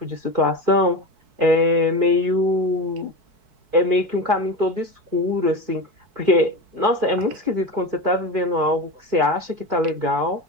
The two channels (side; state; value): left; late; 4.6 ms